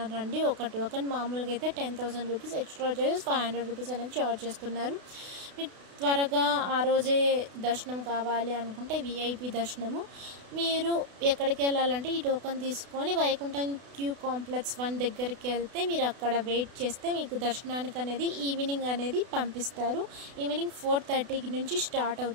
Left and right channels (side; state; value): left; late; 32 ms